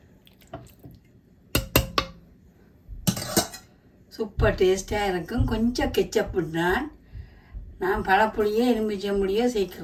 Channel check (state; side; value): identical; both; correlation 1.00